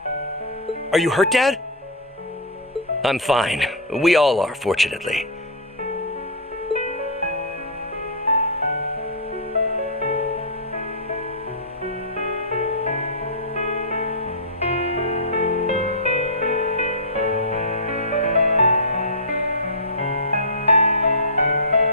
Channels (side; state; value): both; normal; correlation -0.11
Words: Are you hurt, Dad? I'm fine. We all are, fortunately.